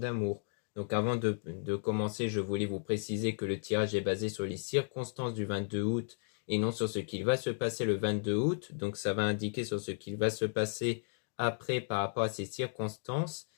Donc avant de commencer, je voulais vous préciser que le tirage est basé sur les circonstances du 22 août et non sur ce qu'il va se passer le 22 août. Donc ça va indiquer sur ce qu'il va se passer après par rapport à ces circonstances.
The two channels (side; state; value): right; silent; digital silence